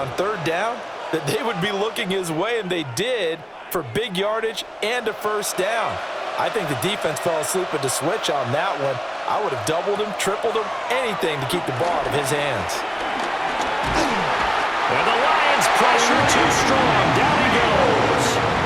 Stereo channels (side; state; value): both; identical; correlation 1.00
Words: 3rd down that they would be looking his way, and they did, for big yardage and a first down. I think the defense fell asleep at the switch on that one. I would have doubled him, tripled him, anything to keep the ball out of his hands. And the Lions pressure too strong. Down he goes.